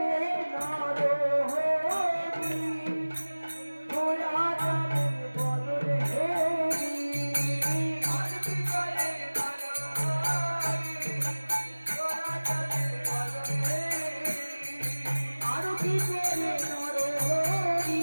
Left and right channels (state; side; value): inverted; both; correlation -1.00